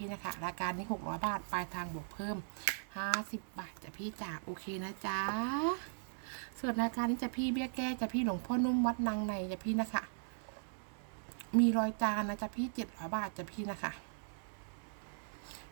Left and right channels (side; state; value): left; silent; digital silence